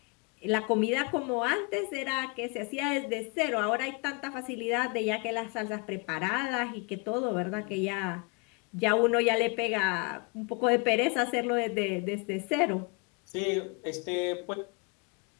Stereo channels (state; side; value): quieter; right; 30.4 dB